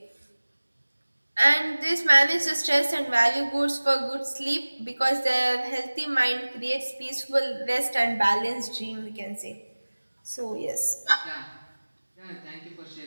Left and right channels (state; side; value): inverted; both; correlation -1.00